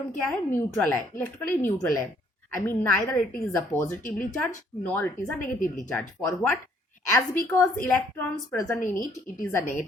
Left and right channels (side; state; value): both; normal; correlation 0.65